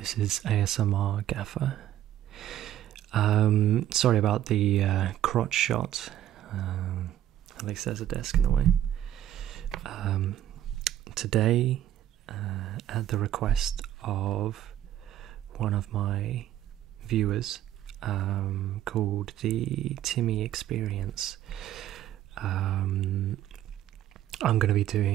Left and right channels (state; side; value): quieter; left; 12.0 dB